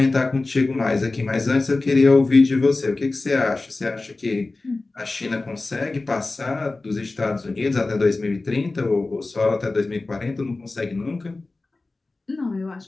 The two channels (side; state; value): right; quieter; 3.3 dB